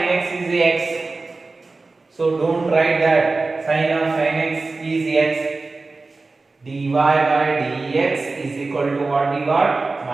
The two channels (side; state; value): left; quieter; 3.6 dB